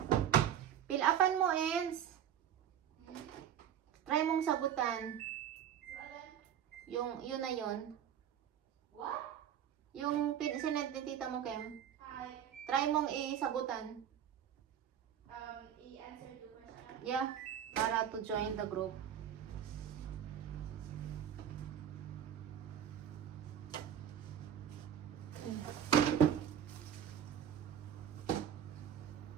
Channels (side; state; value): left; quieter; 9.5 dB